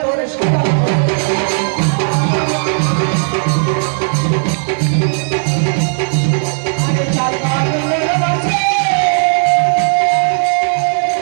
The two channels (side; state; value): left; silent; digital silence